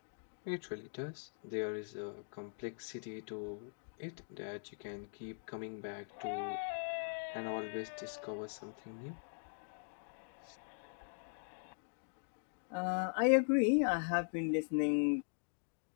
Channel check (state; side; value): silent; right; digital silence